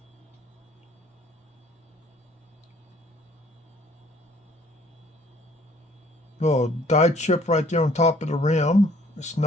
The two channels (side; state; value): both; normal; correlation 0.58